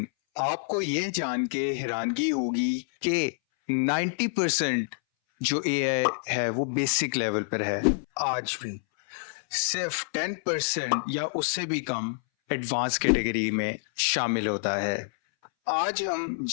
आपको ये जान के हैरानगी होगी कि 90% जो एआई है वो बेसिक लेवल पर है। आज भी सिर्फ 10% या उससे भी कम एडवांस कैटेगरी में शामिल होता है। आज हम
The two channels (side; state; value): right; silent; 60 dB below the other